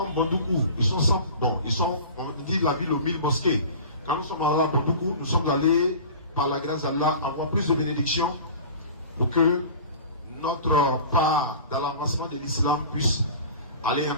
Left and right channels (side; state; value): both; inverted; correlation -0.39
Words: Bondoukou, ils sont 100, bon, ils sont, on dit la ville aux 1000 mosquées. Quand nous sommes allés à Bondoukou, nous sommes allés, par la grâce d'Allah, avoir plus de bénédictions pour que notre part dans l'avancement de l'islam puisse aller